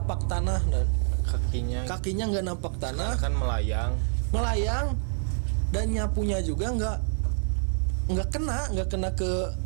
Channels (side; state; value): left; silent; 58 dB below the other